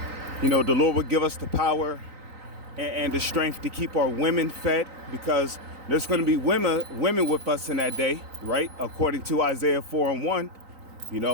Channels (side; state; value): left; late; 3.9 ms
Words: The Lord will give us the power and the strength to keep our women fed, because there's going to be women with us in that day, right? According to Isaiah 4:1,